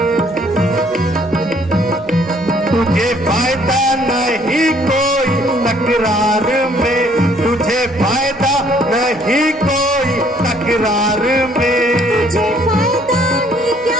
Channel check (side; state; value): right; noise; hum, 27 dB below the sound